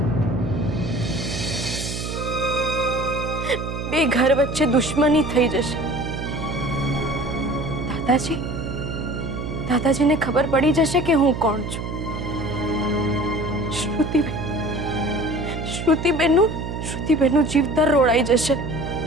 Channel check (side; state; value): right; noise; hum, 5 dB below the sound